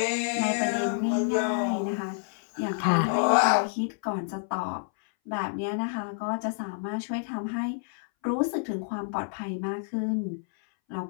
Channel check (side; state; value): right; silent; 59 dB below the other